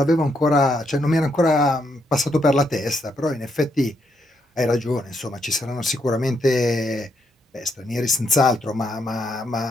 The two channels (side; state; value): both; normal; correlation 0.77